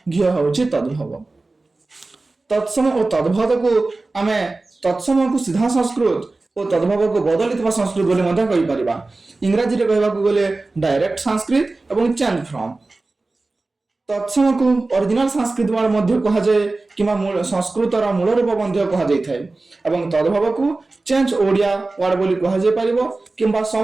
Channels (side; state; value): left; quieter; 3.3 dB